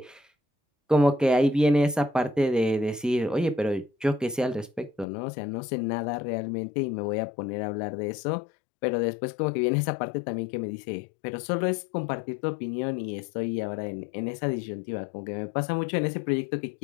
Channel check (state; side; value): drops out; right; at 5.1 s